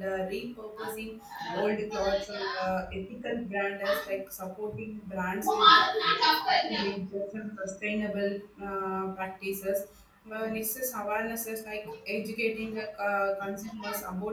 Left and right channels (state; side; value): identical; both; correlation 1.00